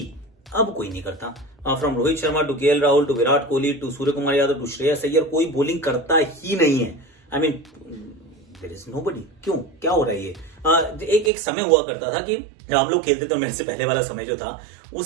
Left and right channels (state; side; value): drops out; left; at 11.3 s